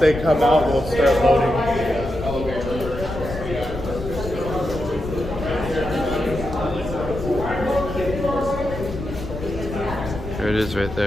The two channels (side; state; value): left; noise; rumble, 9 dB below the sound